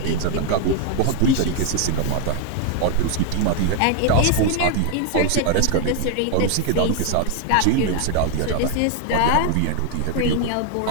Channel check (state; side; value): different; both; correlation 0.01